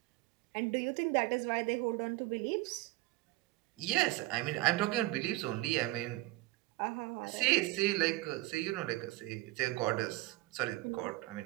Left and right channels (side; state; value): left; quieter; 19.3 dB